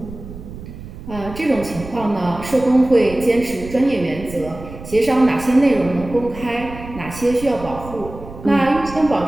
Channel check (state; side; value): noise; right; rumble, 13 dB below the sound